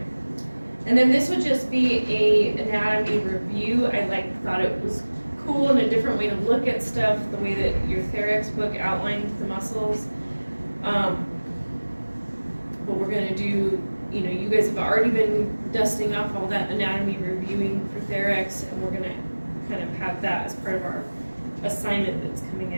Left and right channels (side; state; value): both; inverted; correlation -1.00